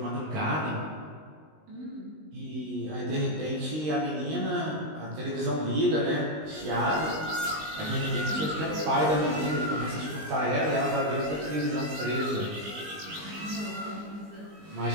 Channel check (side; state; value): left; late; 19 ms